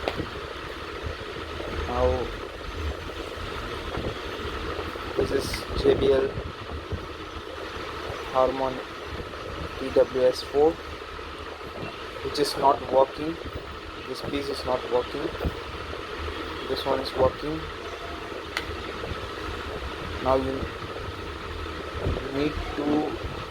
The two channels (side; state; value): both; identical; correlation 1.00